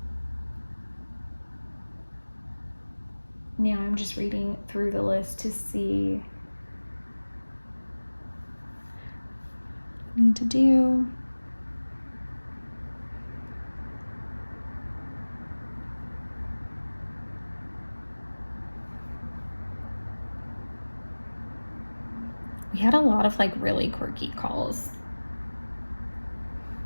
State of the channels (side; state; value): both; inverted; correlation -1.00